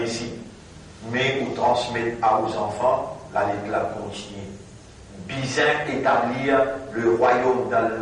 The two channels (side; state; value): both; identical; correlation 1.00